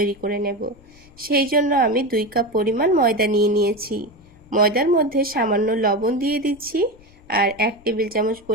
করে নেব। সেই জন্য আমি 2 কাপ পরিমাণ ময়দা নিয়ে নিয়েছি। ময়দার মধ্যে সামান্য লবণ দিয়ে দিচ্ছি আর 1 টেবিল চামচ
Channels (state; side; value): noise; left; rumble, 26 dB below the sound